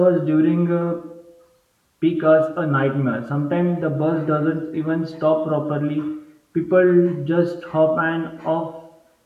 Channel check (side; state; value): both; identical; correlation 1.00